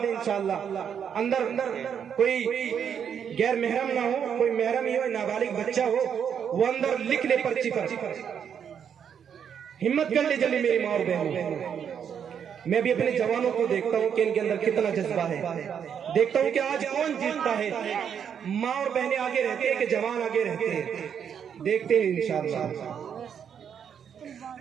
دیں انشاءاللہ، اندر کوئی غیر محرم نہ ہو، کوئی محرم ہی ہو، نابالغ بچہ ہو، وہ اندر لکھ لے پرچی پر۔ ہمت کر لے جلدی میری ماں اور بہنوں۔ میں بھی اپنے جوانوں کو دیکھتا ہوں کہ ان کے اندر کتنا جذبہ ہے، دیکھتا ہوں کہ آج کون جیتتا ہے، ماں اور بہنیں آگے رہتے ہیں کہ جوان آگے رہتے ہیں، دیکھتے ہیں انشاءاللہ۔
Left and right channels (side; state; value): left; quieter; 7.9 dB